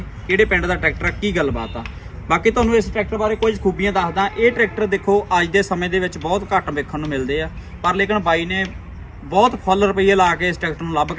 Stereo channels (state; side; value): identical; both; correlation 1.00